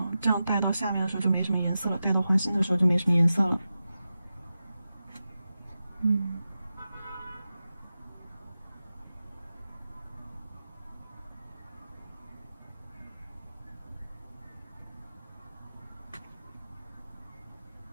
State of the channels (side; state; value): both; inverted; correlation -0.92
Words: 这样带到下面的时候就没什么颜色了，带到花心的时候就没什么颜色了。